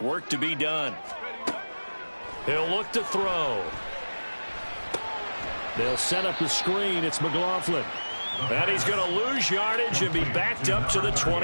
Work to be done. He'll look to throw. They'll set up the screen. It's McLaughlin. And he's going to lose yardage and be backed up to the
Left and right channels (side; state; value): both; inverted; correlation -1.00